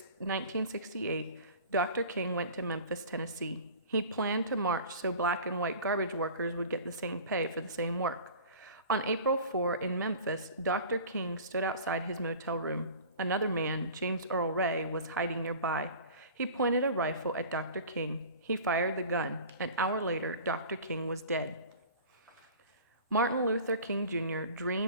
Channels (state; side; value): inverted; both; correlation -0.41